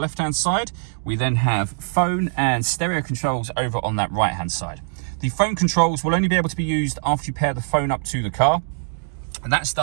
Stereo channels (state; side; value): silent; left; digital silence